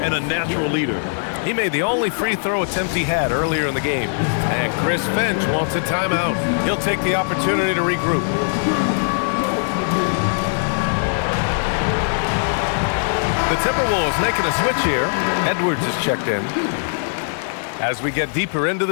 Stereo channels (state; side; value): silent; right; 56 dB below the other